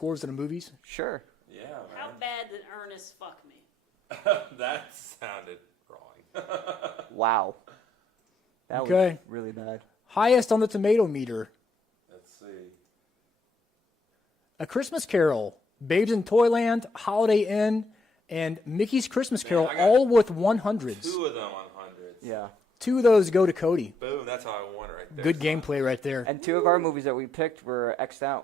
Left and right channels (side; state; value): both; normal; correlation 0.74